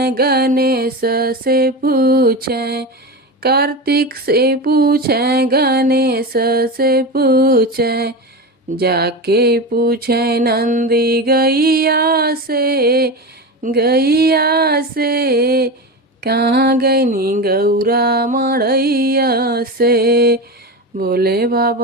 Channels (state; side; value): normal; both; correlation 0.22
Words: गणेश से पूछे, कार्तिक से पूछे गणेश से पूछे, जाके पूछे नंदी गैया से कहाँ गईनी गौरा मड़ैया से। भोले